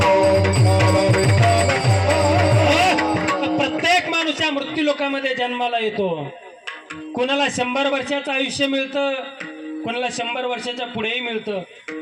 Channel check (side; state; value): both; identical; correlation 1.00